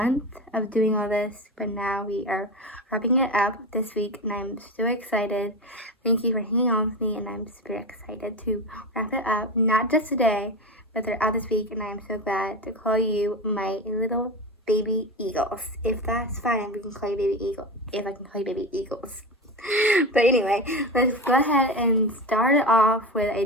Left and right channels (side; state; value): both; normal; correlation 0.22